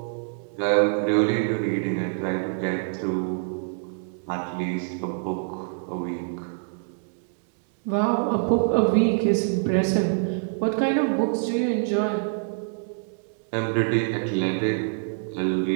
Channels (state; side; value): silent; left; digital silence